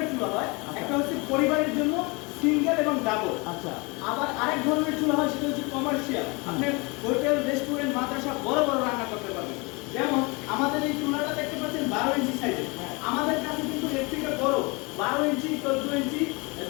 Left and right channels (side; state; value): right; quieter; 28.1 dB